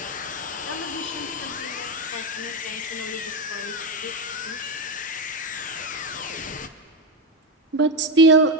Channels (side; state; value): both; normal; correlation 0.11